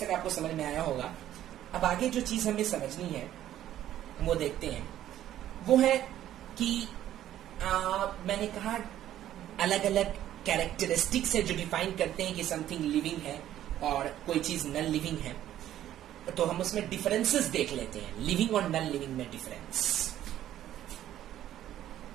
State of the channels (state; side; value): quieter; left; 12.3 dB